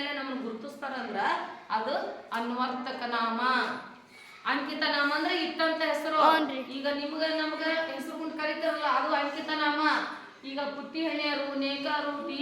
ನಮ್ಮನ್ನು ಗುರುತಿಸ್ತಾರಂದ್ರ ಅದು ಅನ್ವರ್ತಕ ನಾಮ. ಅಂಕಿತ ನಾಮ ಅಂದ್ರೆ ಇಟ್ಟಂತ ಹೆಸರು. ಈಗ ನಿಮ್ಗ ನಮ್ಗ ಹೆಸರು ಕೊಂಡು ಕರೀತಾರಲ್ಲ ಅದು ಅಂಕಿತ ನಾಮ. ಈಗ ಪುಟ್ಟಿ ಹಣಿಯರು, ನೇಕಾರು,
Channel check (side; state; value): both; identical; correlation 1.00